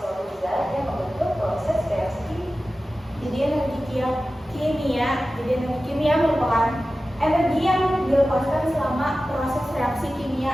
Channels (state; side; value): normal; both; correlation 0.95